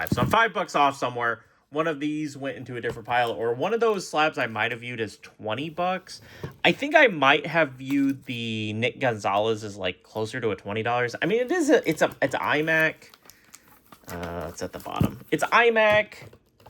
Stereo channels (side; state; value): both; identical; correlation 1.00